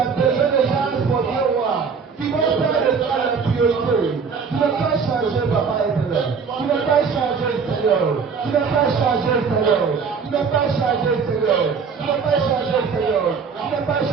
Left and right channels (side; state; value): left; quieter; 5.7 dB